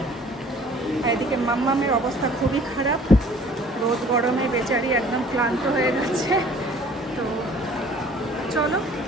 আর এদিকে মাম্মামের অবস্থা খুবই খারাপ, রোদ গরমে বেচারি একদম ক্লান্ত হয়ে গেছে। তো চলো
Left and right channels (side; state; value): both; normal; correlation 0.52